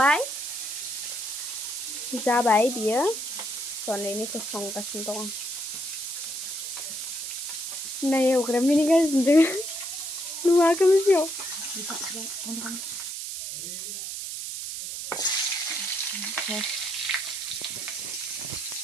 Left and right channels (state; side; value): noise; right; hiss, 5 dB below the sound